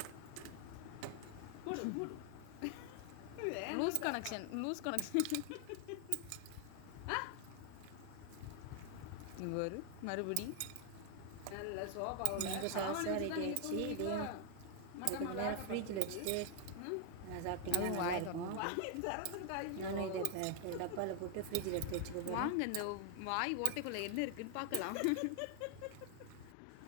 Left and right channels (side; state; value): both; different; correlation 0.00